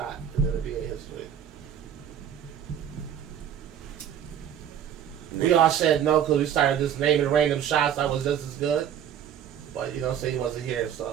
in NBA history? We all said no because we started just naming random shots that was just as good. But you know, say he wasn't here,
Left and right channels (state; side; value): quieter; left; 9.4 dB